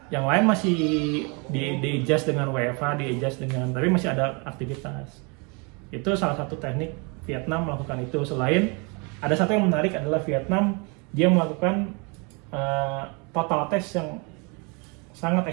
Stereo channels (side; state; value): left; quieter; 31.7 dB